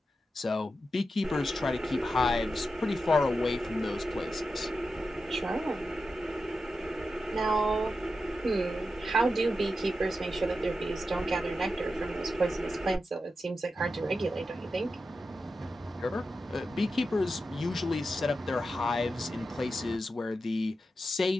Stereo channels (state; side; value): normal; both; correlation 0.90